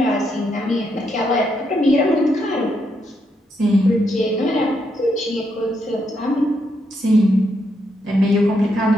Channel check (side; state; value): both; normal; correlation 0.78